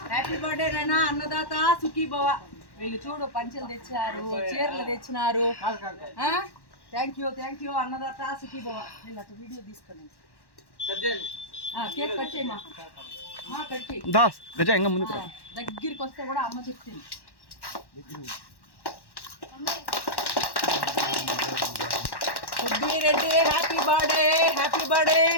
Happy birthday Raina అన్నదాత సుఖీ భవ. వీళ్ళు చూడు పంచెలు తెచ్చారు, చీరలు తెచ్చినారు. థ్యాంక్ యూ అన్నదాత సుఖీ భవ. వీళ్ళు అటు వీడియో తీసుకుని కేక్ కట్ చేయమా, కట్ చేయి. దగ్గరికి వస్తే కూడా అమ్మ చెప్తుంది. Reddy happy birthday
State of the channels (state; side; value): late; right; 1.1 ms